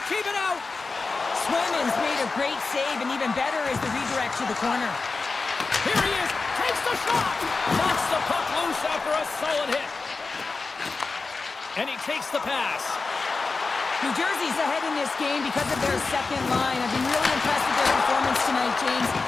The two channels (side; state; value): right; quieter; 4.1 dB